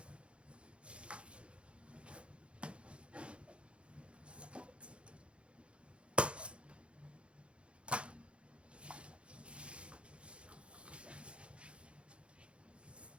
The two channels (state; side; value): late; left; 0.059 ms